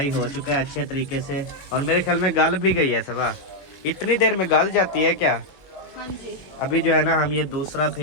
हो चुका है अच्छे तरीके से, और मेरे ख्याल में गल भी गई है सबा। इतनी देर में गल जाती है क्या? हाँ जी। अभी जो है ना हम ये दूसरा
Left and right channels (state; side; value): late; right; 21 ms